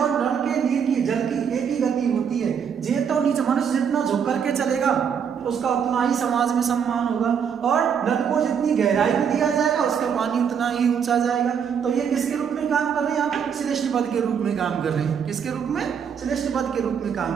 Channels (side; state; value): left; quieter; 7.4 dB